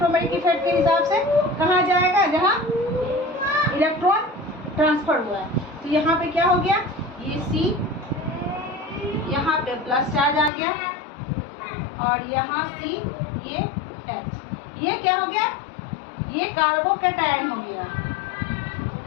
इफेक्ट के हिसाब से कहाँ जाएगा, जहाँ इलेक्ट्रॉन ट्रांसफर हुआ है। तो यहाँ पे क्या हो गया, ये C, यहाँ पे प्लस चार्ज आ गया, और यहाँ C, ये H, ये क्या हो गया, ये कार्बोकेटायन हो गया,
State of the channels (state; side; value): drops out; right; at 10.5 s